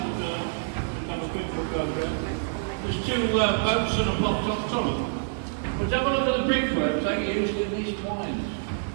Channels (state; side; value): silent; left; digital silence